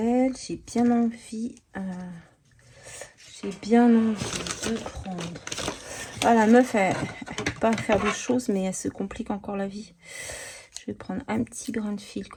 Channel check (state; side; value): identical; both; correlation 1.00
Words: J'ai bien envie de prendre. Ah, la meuf, elle peut pas faire de choses, mais elle se complique encore la vie. Je vais prendre un petit grain de fil